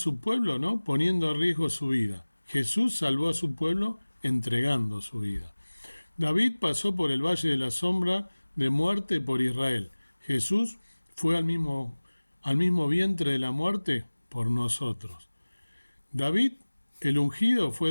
pueblo, ¿no? Poniendo en riesgo su vida. Jesús salvó a su pueblo entregando su vida. David pasó por el valle de la sombra de muerte por Israel. Jesús fue al mismo vientre de la muerte por nosotros. David, el ungido, fue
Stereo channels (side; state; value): both; inverted; correlation -1.00